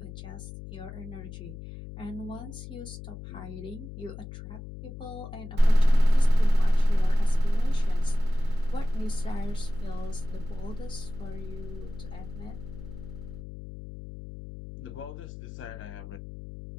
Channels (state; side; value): noise; left; hum, 12 dB below the sound